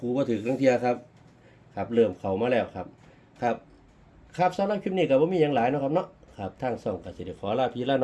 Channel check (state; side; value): identical; both; correlation 1.00